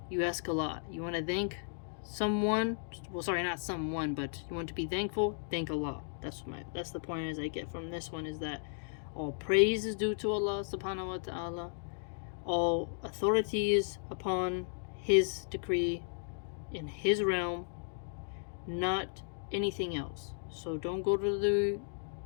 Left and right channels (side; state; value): right; silent; digital silence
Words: you ask Allah. You want to thank someone, not someone, but you want to be thankful, thank Allah. That's the point as I get from this one, is that all praise is due to Allah subhanahu wa ta'ala. All authority is upon His decree in His realm, not anything else. So don't go to the